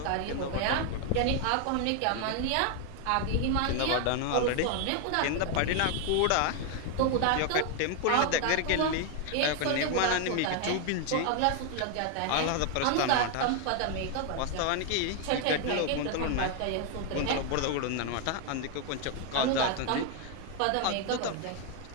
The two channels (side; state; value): both; different; correlation 0.01